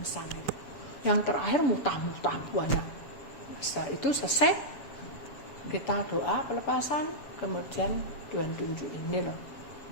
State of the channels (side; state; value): right; late; 7.0 ms